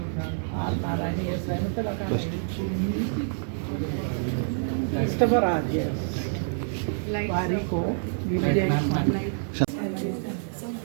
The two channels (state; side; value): silent; left; digital silence